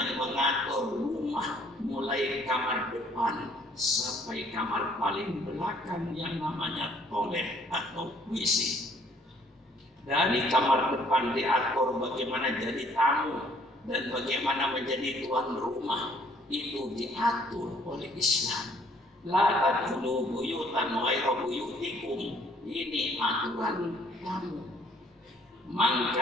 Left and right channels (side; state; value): both; normal; correlation 0.61